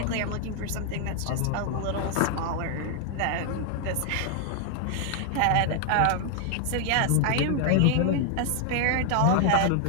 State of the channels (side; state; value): both; different; correlation 0.00